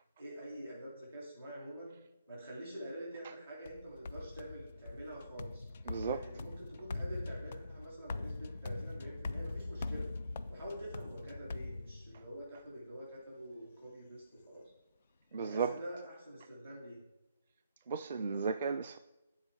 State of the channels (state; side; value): inverted; both; correlation -0.76